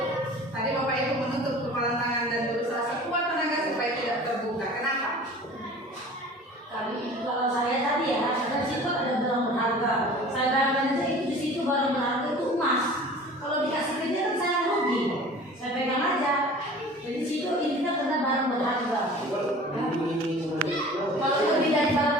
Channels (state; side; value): normal; both; correlation 0.43